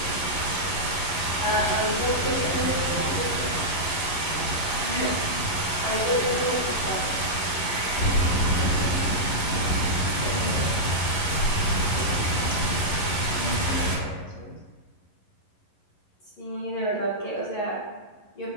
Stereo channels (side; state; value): right; late; 11 ms